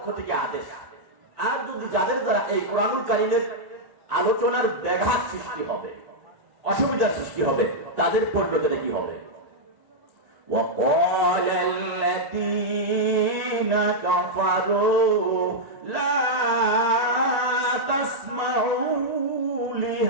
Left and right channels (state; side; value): late; left; 1.9 ms